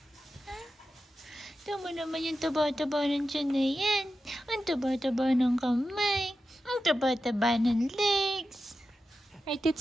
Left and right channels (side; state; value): both; normal; correlation 0.91